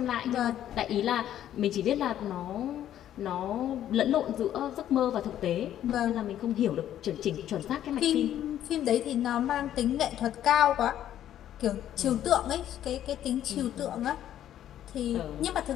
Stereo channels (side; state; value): right; quieter; 11.4 dB